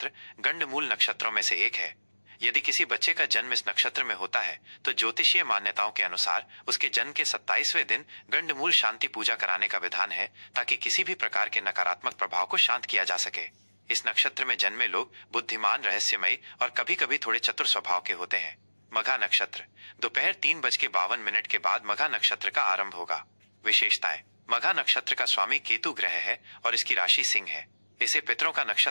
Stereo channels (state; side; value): inverted; both; correlation -1.00